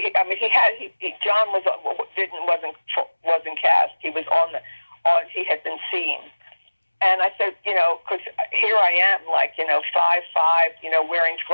John wasn't cast. He was he had been seen. And I said, because here I am, 5'5", wearing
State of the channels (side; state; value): both; inverted; correlation -1.00